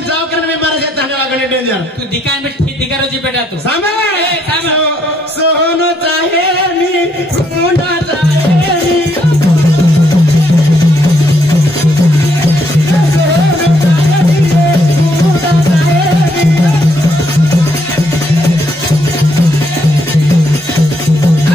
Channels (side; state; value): both; normal; correlation 0.73